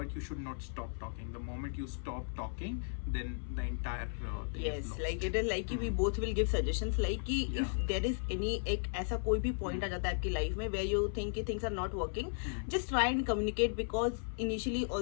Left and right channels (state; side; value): silent; right; 54 dB below the other